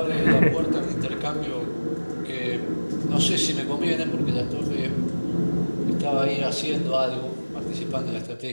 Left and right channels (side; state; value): both; inverted; correlation -1.00